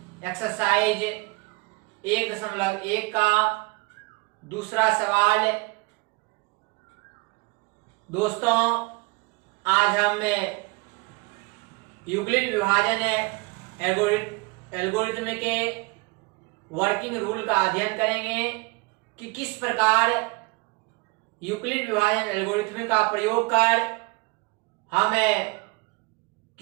एक्सरसाइज 1.1 का दूसरा सवाल। दोस्तों, आज हम यूक्लिड विभाजन एल्गोरिथ्म के वर्किंग रूल का अध्ययन करेंगे कि किस प्रकार यूक्लिड विभाजन एल्गोरिथ्म का प्रयोग कर हम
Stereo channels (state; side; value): quieter; left; 26.8 dB